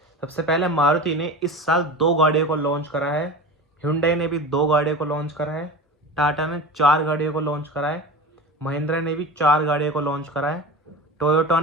सबसे पहले मारुति ने इस साल 2 गाड़ियों को लॉन्च करा है, Hyundai ने भी 2 गाड़ियों को लॉन्च करा है, टाटा ने 4 गाड़ियों को लॉन्च करा है, महिंद्रा ने भी 4 गाड़ियों को लॉन्च करा है, टोयोटा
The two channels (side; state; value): both; normal; correlation 0.31